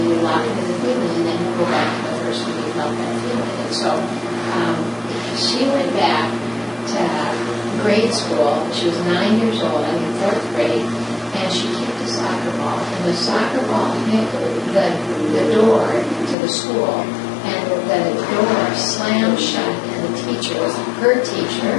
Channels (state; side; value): drops out; right; at 16.4 s